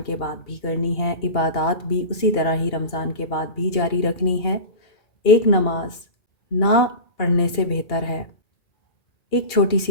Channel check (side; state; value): right; late; 2.8 ms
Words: के बाद भी करनी है। इबादत भी उसी तरह ही रमज़ान के बाद भी जारी रखनी है। एक नमाज ना पढ़ने से बेहतर है, एक छोटी